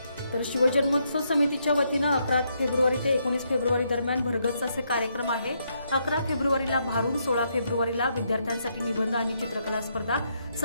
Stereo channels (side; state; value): both; inverted; correlation -0.77